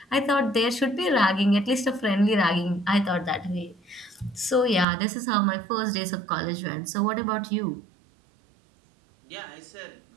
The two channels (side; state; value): left; drops out; at 4.9 s